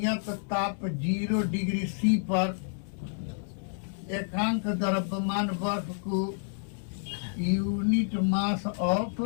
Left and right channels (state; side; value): silent; right; digital silence